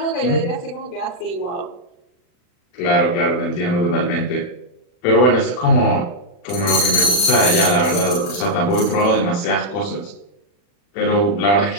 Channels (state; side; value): late; right; 40 ms